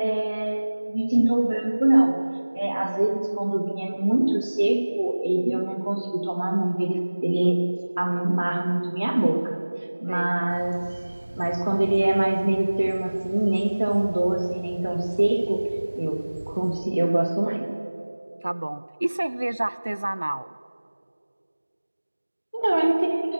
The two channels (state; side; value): inverted; both; correlation -1.00